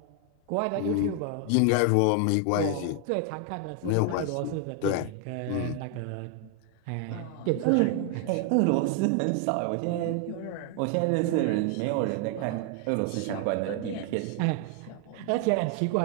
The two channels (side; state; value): both; different; correlation 0.00